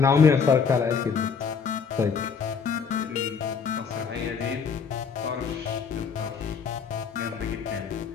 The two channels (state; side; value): quieter; right; 6.0 dB